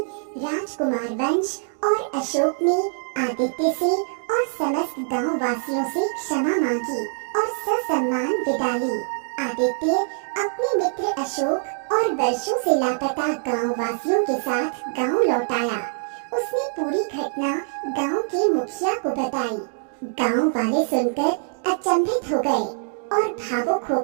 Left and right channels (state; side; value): silent; left; digital silence